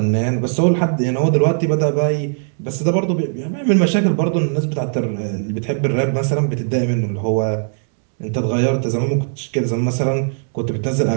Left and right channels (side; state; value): left; silent; digital silence